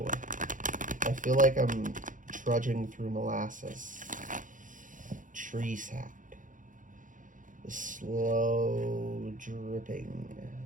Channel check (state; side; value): late; left; 0.38 ms